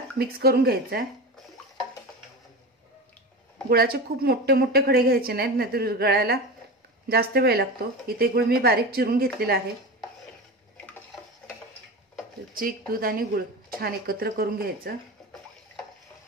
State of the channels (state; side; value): normal; both; correlation 0.26